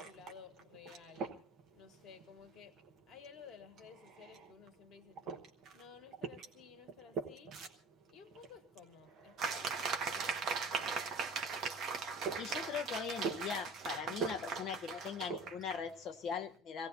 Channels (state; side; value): normal; both; correlation 0.41